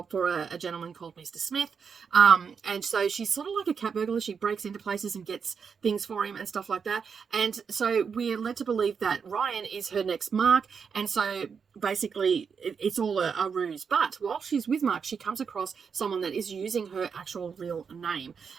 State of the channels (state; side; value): quieter; left; 6.2 dB